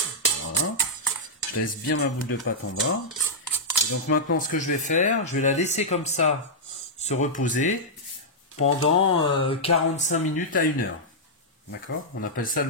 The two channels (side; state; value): both; normal; correlation -0.09